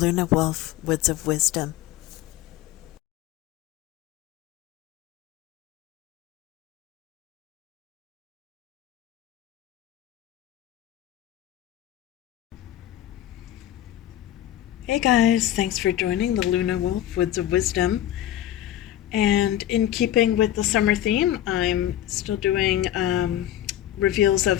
Woods of Wisdom. Hey guys, thanks for joining the Lunawolf Woods of Wisdom. And in keeping with the summer theme, I'm still doing reveals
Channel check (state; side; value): quieter; right; 12.3 dB